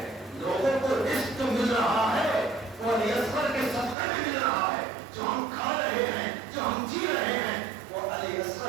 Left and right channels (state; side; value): drops out; left; at 4.0 s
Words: لوگوں کو رزق مل رہا ہے, وہ علی اصغر کے صدقے میں مل رہا ہے. جو ہم کھا رہے ہیں, جو ہم جی رہے ہیں, وہ علی